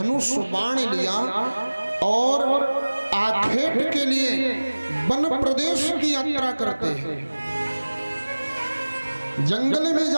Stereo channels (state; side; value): inverted; both; correlation -1.00